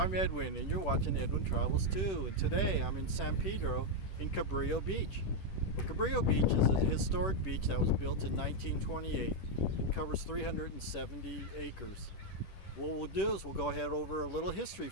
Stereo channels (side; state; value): right; late; 10 ms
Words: Edwin, and you're watching Edwin Travels too. And today I'm in San Pedro in Cabrillo Beach. Well, Cabrillo Beach is a historic beach that was built in 1928. It covers 370 acres. What we'll do is we'll go ahead over a little history